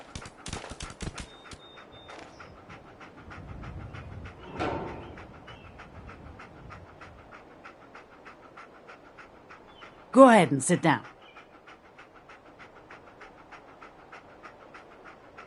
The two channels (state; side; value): identical; both; correlation 1.00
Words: Go ahead and sit down.